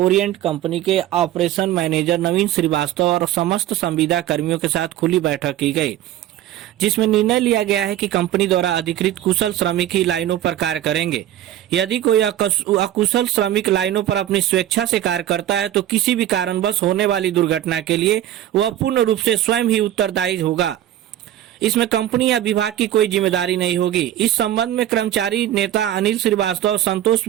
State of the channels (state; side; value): quieter; left; 12.5 dB